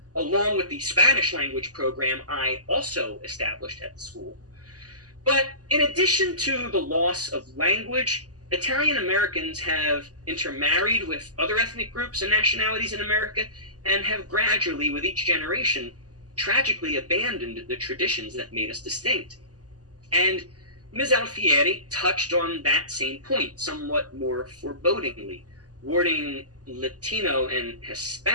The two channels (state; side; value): late; left; 0.67 ms